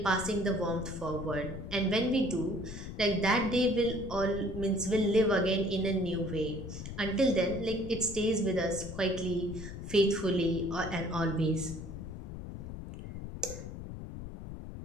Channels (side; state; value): left; noise; rumble, 9 dB below the sound